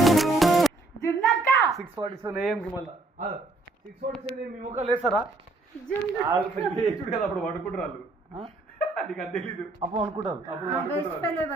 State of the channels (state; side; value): quieter; left; 3.2 dB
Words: జున్నక్క 6:47 AM కి మళ్ళీ 6:47 మీ ముఖాలు వేస్తారా చూడు కదా అప్పుడు పడుకుంటారు నీకు అది తెలీదు అప్పుడు అనుకుంటారు